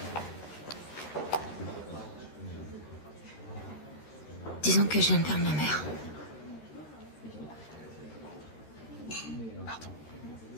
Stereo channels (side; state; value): right; late; 13 ms